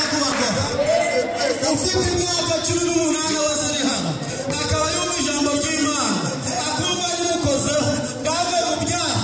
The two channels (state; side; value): identical; both; correlation 1.00